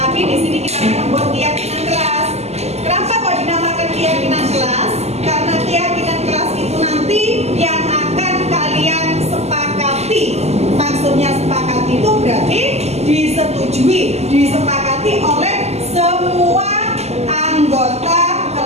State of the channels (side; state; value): left; late; 0.31 ms